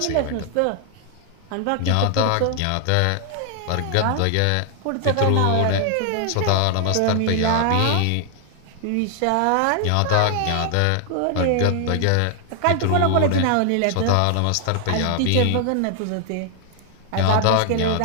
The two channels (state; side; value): different; both; correlation 0.00